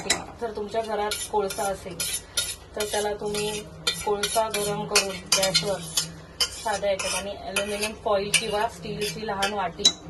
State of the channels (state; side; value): identical; both; correlation 1.00